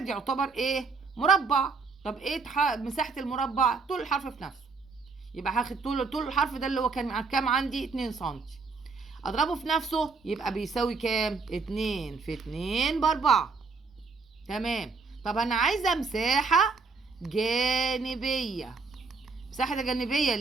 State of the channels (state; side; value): quieter; left; 4.5 dB